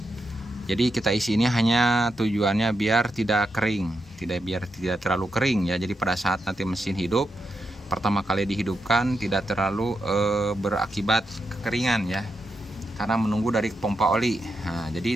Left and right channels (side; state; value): both; normal; correlation 0.84